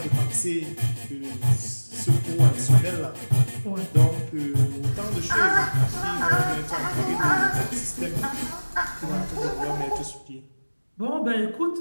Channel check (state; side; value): inverted; both; correlation -1.00